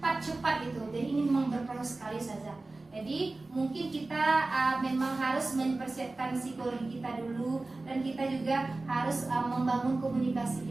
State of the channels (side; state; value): left; quieter; 3.2 dB